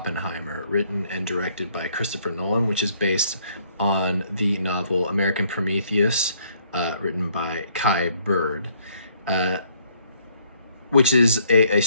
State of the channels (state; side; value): inverted; both; correlation -0.65